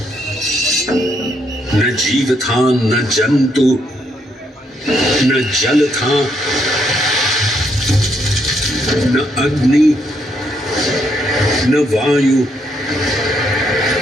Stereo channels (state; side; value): normal; both; correlation 0.74